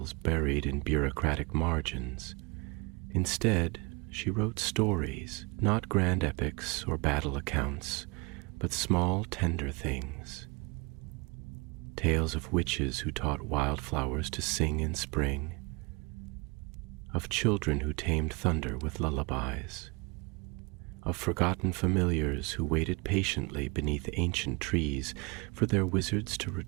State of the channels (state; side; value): quieter; left; 28.5 dB